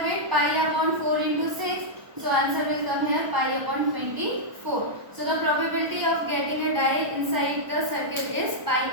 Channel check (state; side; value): late; left; 1.1 ms